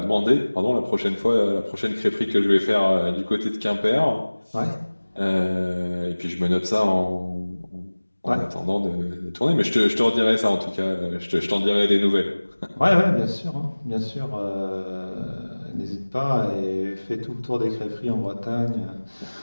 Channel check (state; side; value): inverted; both; correlation -1.00